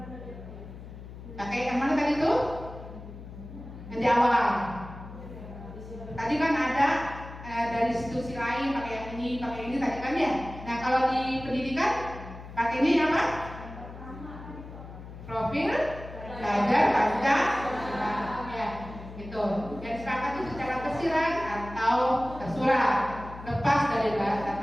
pakai yang mana tadi itu? Yang di awal. Tadi kan ada dari institusi lain pakai ini tadi kan ya. Nah, kalau di pendidikan pakai ini apa? Profil belajar Pancasila. Itu yang disepakati secara tersirat atau tersurat, lepas dari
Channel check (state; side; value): noise; left; hum, 13 dB below the sound